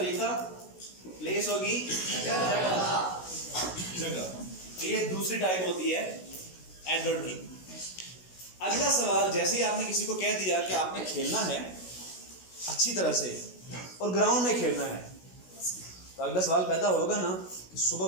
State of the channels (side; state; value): right; late; 16 ms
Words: प्लेस होगी जगह। ये दूसरी टाइप होती है एडवर्ब की। अगला सवाल, जैसे ही आपने किसी को कह दिया कि आपने खेलना है अच्छी तरह से और ग्राउंड में खेलना है, तो अगला सवाल पैदा होगा ना कि